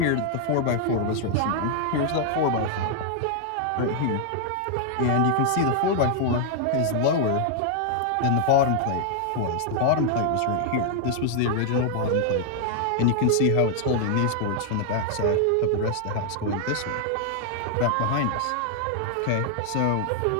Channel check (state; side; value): different; both; correlation 0.00